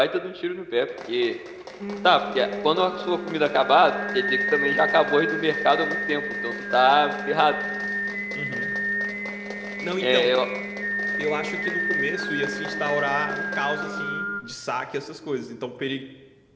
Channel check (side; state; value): both; identical; correlation 1.00